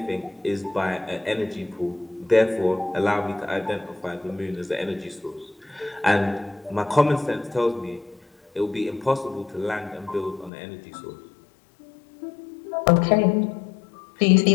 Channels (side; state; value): right; drops out; at 10.5 s